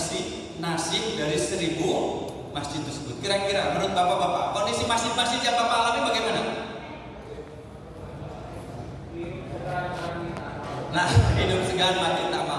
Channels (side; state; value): both; identical; correlation 1.00